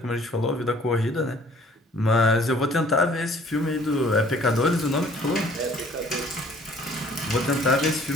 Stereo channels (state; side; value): normal; both; correlation 0.56